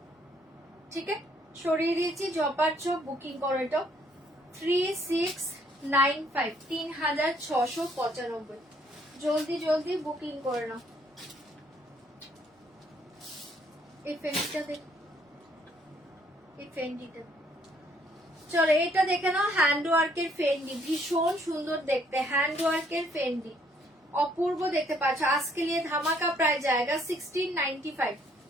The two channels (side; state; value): both; normal; correlation 0.67